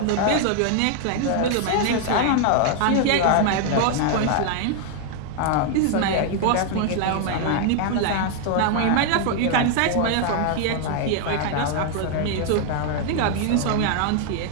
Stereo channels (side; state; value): both; different; correlation 0.00